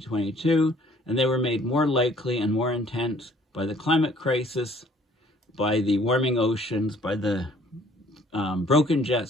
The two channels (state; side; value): normal; both; correlation 0.58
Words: and they were made more likely and more intense by the climate crisis, by the warming oceans, by the broken jet